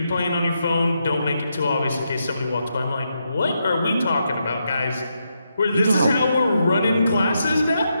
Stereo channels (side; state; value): both; inverted; correlation -0.82